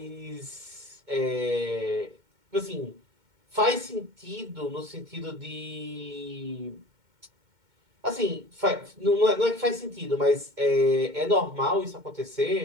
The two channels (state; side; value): late; left; 2.2 ms